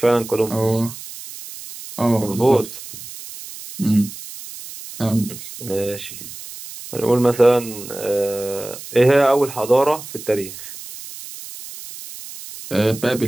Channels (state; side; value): noise; right; hiss, 13 dB below the sound